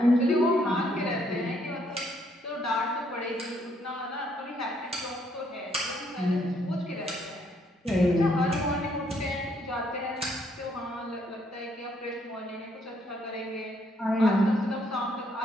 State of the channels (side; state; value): both; normal; correlation 0.70